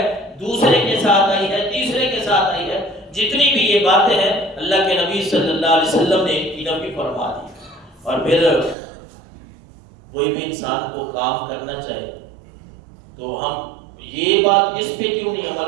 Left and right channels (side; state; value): left; drops out; at 8.8 s